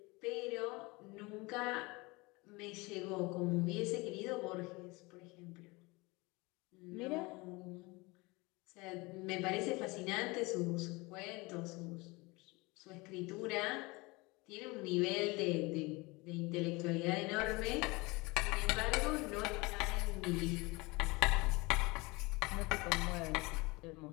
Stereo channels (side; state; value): right; quieter; 24.6 dB